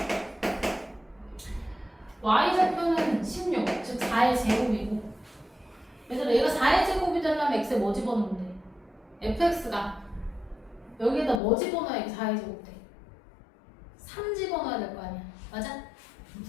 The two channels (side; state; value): right; drops out; at 11.4 s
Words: y좌표는 16, 즉 4의 제곱이고 얘들아 얘가 4의 제곱이 되려면 x에 뭐 집어넣으면 돼? fx가 여기에다 뭐 집어넣어야 이게 4의 제곱 돼? 3 집어넣어야 될 거 아니야. 맞아?